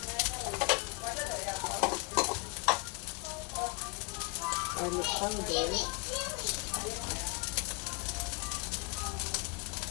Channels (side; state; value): right; quieter; 29.4 dB